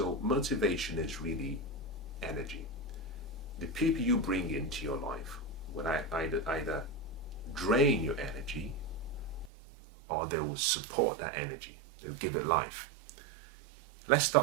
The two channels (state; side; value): drops out; left; at 9.5 s